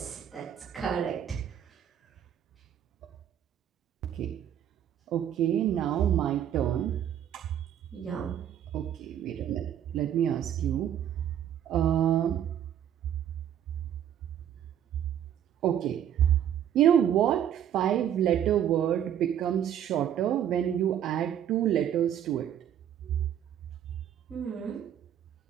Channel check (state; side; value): quieter; left; 10.0 dB